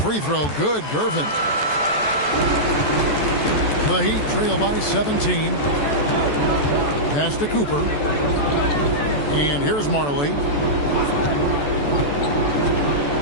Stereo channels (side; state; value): right; late; 14 ms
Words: throw good, Gervin. The Heat trail by 17. Pass to Cooper. And here's Marley.